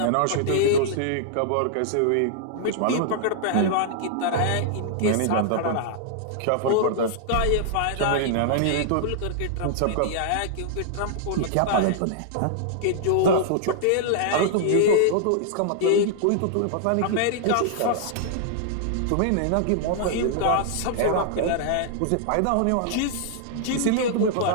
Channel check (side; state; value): both; different; correlation -0.01